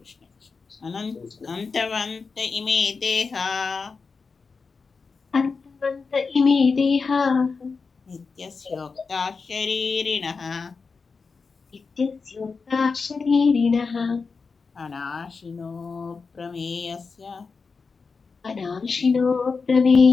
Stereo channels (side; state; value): right; quieter; 4.7 dB